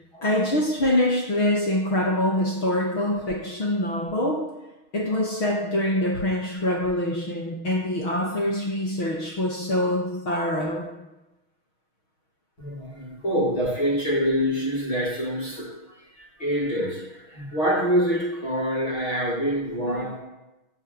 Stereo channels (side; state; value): right; late; 6.3 ms